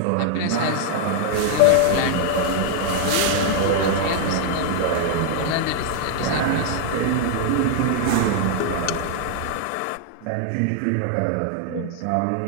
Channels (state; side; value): different; both; correlation 0.00